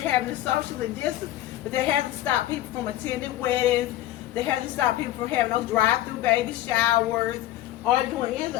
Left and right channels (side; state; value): right; quieter; 14.3 dB